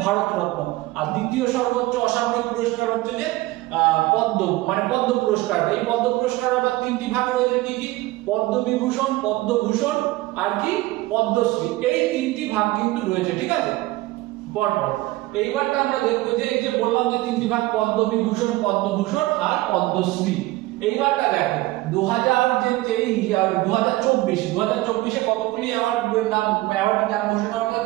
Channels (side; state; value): left; quieter; 18.9 dB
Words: ভারতরত্ন, আর দ্বিতীয় সর্বোচ্চ অসামরিক পুরস্কার হচ্ছে যে পদ্ম পুরস্কার। এই পদ্ম পুরস্কার আবার 3টি ভাগ রয়েছে, কি কি? পদ্মবিভূষণ, পদ্মভূষণ আর কি পদ্মশ্রী, এই 3টি ভাগ কিন্তু রয়েছে। ঠিক আছে, পরপর এইবারটা আমরা দেখবো যে এই যে বললাম যে 3টি ভাগ পদ্মবিভূষণ, পদ্মভূষণ আর পদ্মশ্রী। এইবারটা দেখো 2024 কতগুলি অ্যাওয়ার্ডের নাম ঘোষণা হলো,